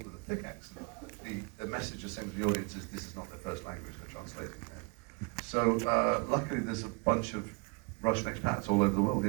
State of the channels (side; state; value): left; quieter; 31.7 dB